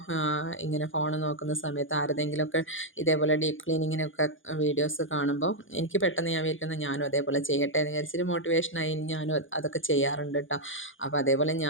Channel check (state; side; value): late; right; 0.57 ms